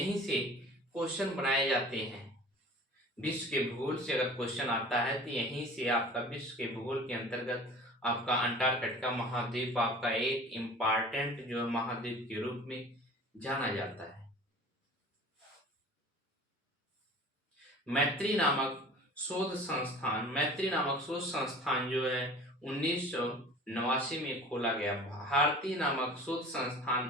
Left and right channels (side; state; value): both; normal; correlation 0.42